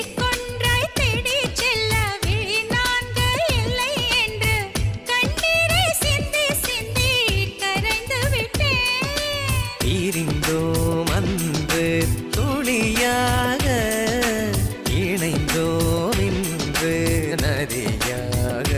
தேடி செல்ல விழி நான்கு இல்லை என்று கண்ணீரை சிந்தி சிந்தி கரைந்து விட்டேன். பிரிந்தோம் அன்று துளியாக, இணைந்தோம் இன்று நதியாக.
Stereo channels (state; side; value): identical; both; correlation 1.00